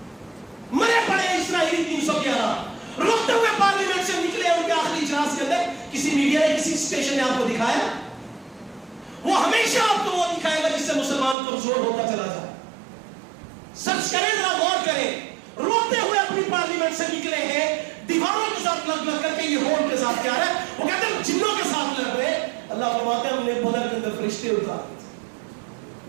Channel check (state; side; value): drops out; left; at 11.4 s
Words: مرے پڑے اسرائیلی 311 رکتے ہوئے پارلیمنٹ سے نکلے ان کے آخری اجلاس کے اندر, کسی میڈیا نے کسی اسٹیشن نے آپ کو دکھایا؟ وہ ہمیشہ آپ کو وہ دکھائے گا جس سے مسلمان کمزور ہوتا چلا جائے. سچ کریں, ذرا غور کریں, روتے ہوئے اپنی پارلیمنٹ سے نکلے ہیں, دیواروں کے ساتھ لگ لگ کر کے یہ ہون کے ساتھ کیا ہے, وہ کہتے ہیں جنوں کے ساتھ لڑ رہے. اللہ فرماتے ہیں ہم نے بدر کے اندر فرشتے اتارے,